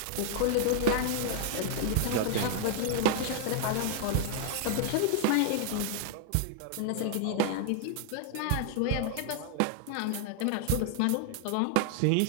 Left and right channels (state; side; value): different; both; correlation 0.00